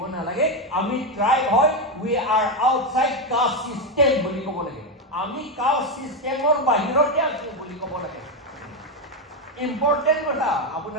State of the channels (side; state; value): both; normal; correlation 0.07